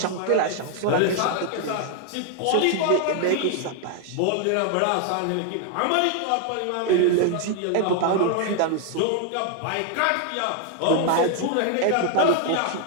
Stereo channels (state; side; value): different; both; correlation 0.00